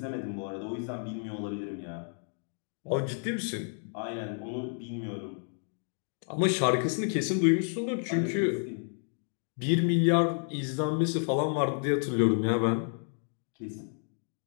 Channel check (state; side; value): silent; right; 57 dB below the other